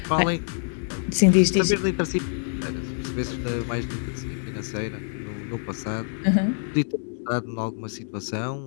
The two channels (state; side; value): silent; right; 61 dB below the other